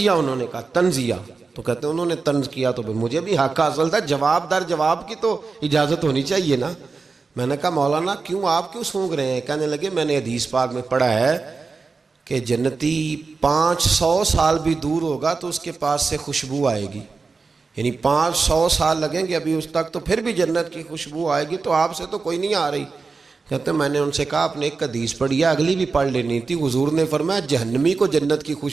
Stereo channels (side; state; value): left; quieter; 4.4 dB